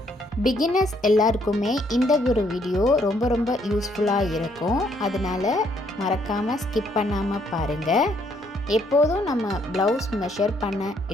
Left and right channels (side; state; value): both; normal; correlation 0.69